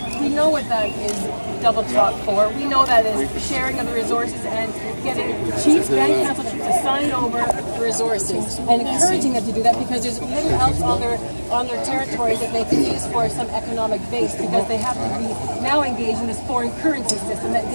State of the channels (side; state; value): both; inverted; correlation -1.00